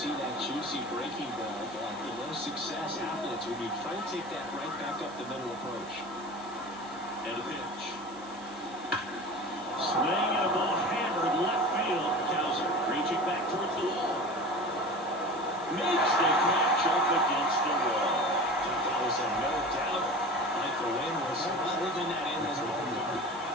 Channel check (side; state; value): right; noise; hiss, 22 dB below the sound